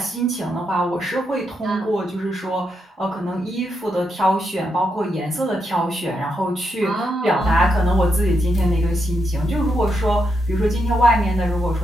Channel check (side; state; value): both; normal; correlation 0.82